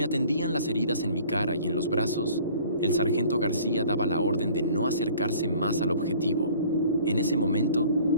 atendían las heridas en mi cara y en los brazos, el sargento García daba la orden de no acercarse más al objetivo. En ese momento,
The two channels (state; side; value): inverted; both; correlation -0.51